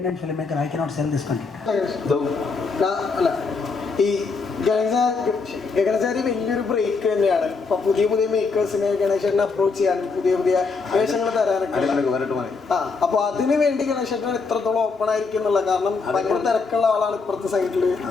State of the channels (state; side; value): quieter; right; 4.5 dB